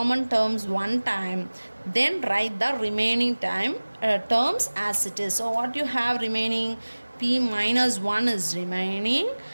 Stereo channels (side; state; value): both; inverted; correlation -1.00